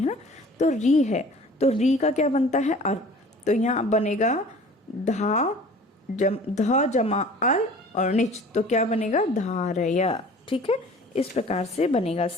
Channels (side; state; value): both; normal; correlation 0.46